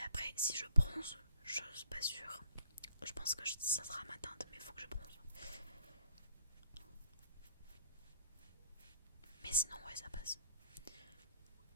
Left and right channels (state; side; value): inverted; both; correlation -0.63